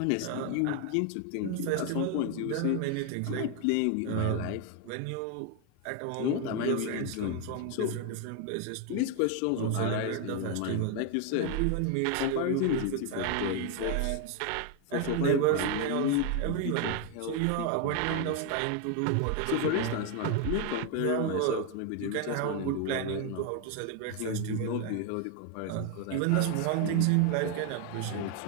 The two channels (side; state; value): both; different; correlation 0.01